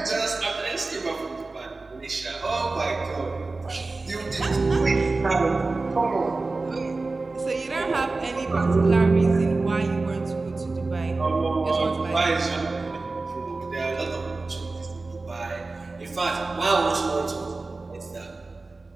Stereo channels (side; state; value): left; quieter; 3.5 dB